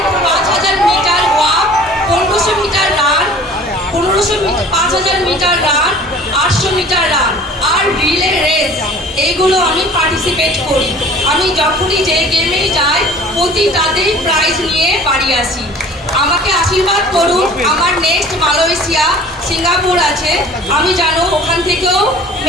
5000 metre walk, 1500 metre run, 5000 metre run, 800 metre run আর রিলে রেস, এইগুলো আমি পার্টিসিপেট করি। আমি যখনই যে গেমেই যাই প্রতিটাতেই প্রাইজ নিয়ে বাড়ি আসি। আমাকে আশীর্বাদ করুন, আমার নেক্সট মালয়েশিয়া সিঙ্গাপুর আছে, আমি জানো ওখান থেকেও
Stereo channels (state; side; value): normal; both; correlation 0.47